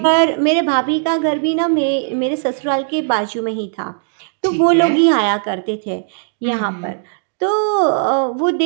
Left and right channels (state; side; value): silent; left; digital silence